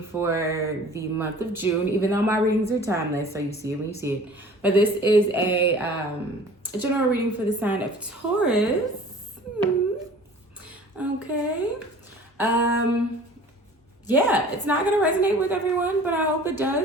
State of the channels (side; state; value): both; normal; correlation 0.46